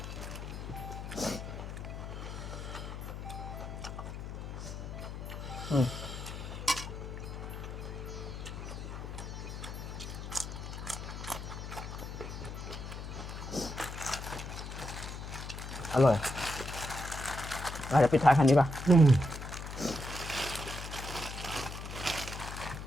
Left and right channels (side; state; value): left; noise; hum, 7 dB below the sound